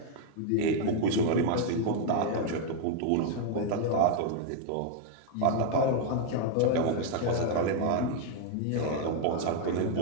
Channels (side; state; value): both; different; correlation 0.00